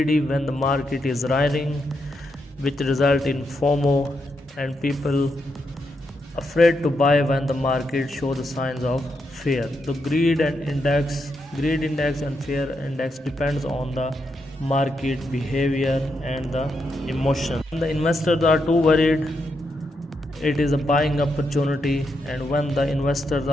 when the market is rising, which result in FOMO, and people afraid to buy when the market show the signs of fear. The greed index and fear index depends on the market behavior and the emotion. When the investors are too worried, it is a buying opportunity, and when the investors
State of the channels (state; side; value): normal; both; correlation 0.82